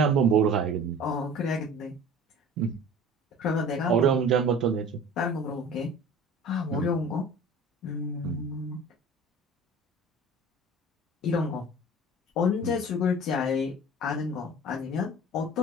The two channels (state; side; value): normal; both; correlation 0.41